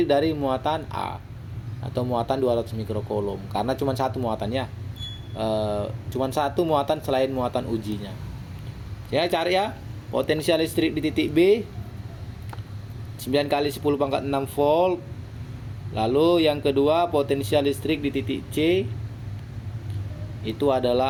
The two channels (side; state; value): both; identical; correlation 1.00